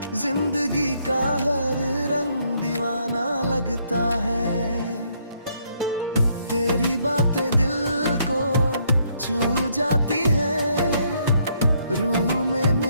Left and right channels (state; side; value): inverted; both; correlation -0.71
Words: जिंदगी का हर रंग दीवाना लगता है। तेरी बातें दिल को छू जाती है, रूह में